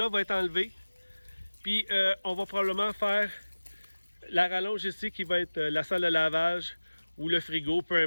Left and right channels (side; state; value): both; inverted; correlation -1.00